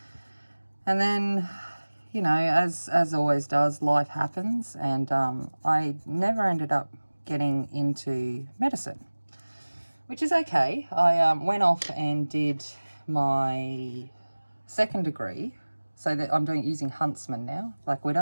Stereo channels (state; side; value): inverted; both; correlation -1.00